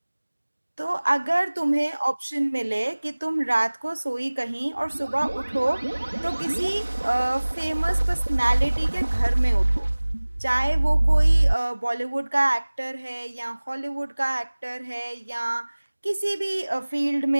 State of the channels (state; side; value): inverted; both; correlation -1.00